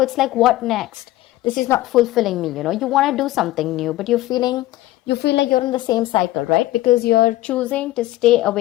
it's like, what next? This is not fulfilling me, you know? You want to do something new, but you feel like you're in the same cycle, right? Because you're choosing to stay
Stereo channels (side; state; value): right; quieter; 16.3 dB